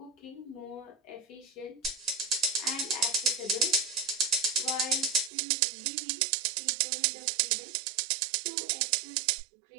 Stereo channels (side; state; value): left; drops out; at 5.3 s